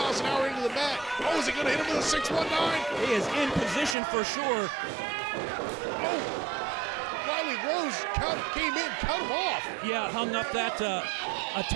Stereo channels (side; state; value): left; drops out; at 4.0 s